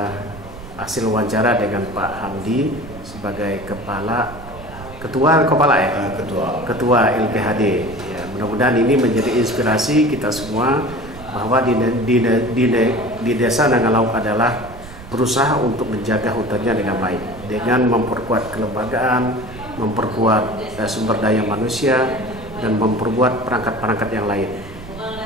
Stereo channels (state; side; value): noise; right; rumble, 15 dB below the sound